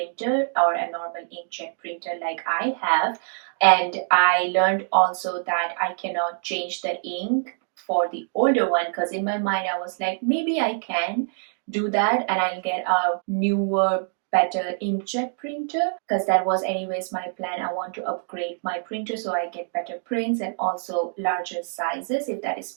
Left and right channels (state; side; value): silent; left; 62 dB below the other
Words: or a normal inkjet printer like I have. And I learned also that I cannot change the ink for the older one, because in my mind I was like, maybe I can do that and I'll get a newer, better inkjet printer, because that was anyways my plan. I want to upgrade my printer so I get better prints and also larger sizes if that is